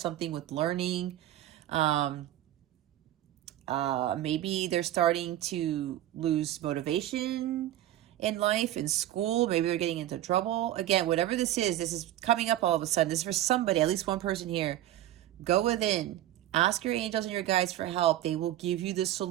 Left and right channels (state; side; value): quieter; left; 13.3 dB